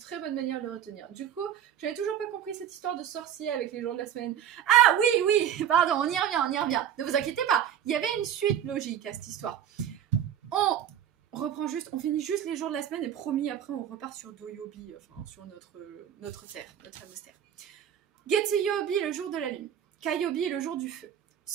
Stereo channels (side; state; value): left; quieter; 9.8 dB